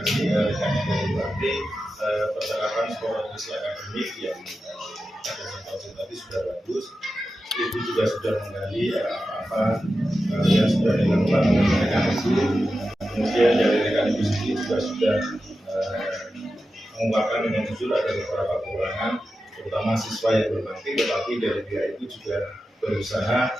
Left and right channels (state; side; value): normal; both; correlation 0.91